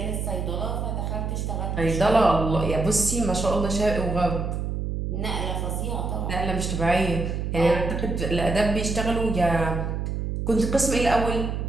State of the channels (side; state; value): right; noise; hum, 2 dB below the sound